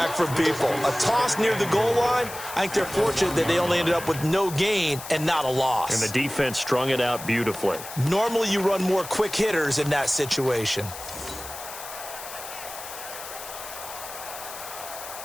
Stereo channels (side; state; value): left; noise; hiss, 12 dB below the sound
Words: from people. A toss near the goal line, I think they're fortunate that they only ended up with no gain and not a loss. And the defense strung it out beautifully. Normally you run more quick hitters in that situation.